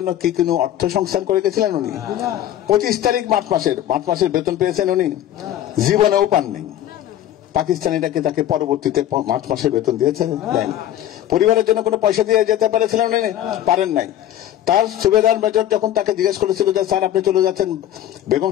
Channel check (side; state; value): right; quieter; 11.9 dB